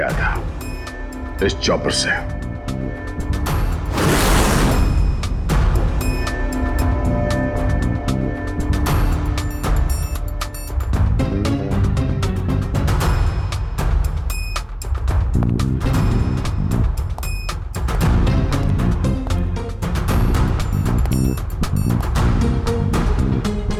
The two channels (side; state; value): both; identical; correlation 1.00